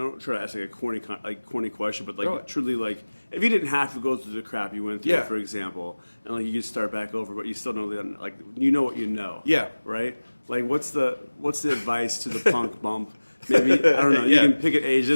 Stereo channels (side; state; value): both; inverted; correlation -1.00